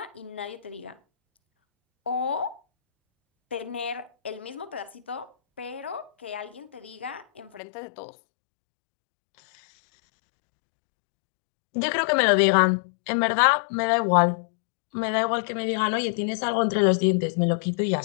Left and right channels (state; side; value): drops out; right; at 7.6 s